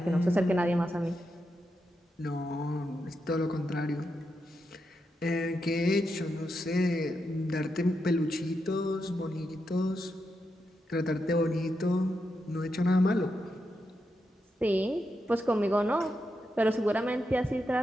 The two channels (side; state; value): both; normal; correlation 0.85